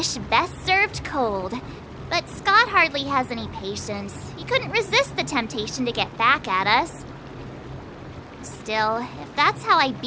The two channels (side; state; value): both; identical; correlation 1.00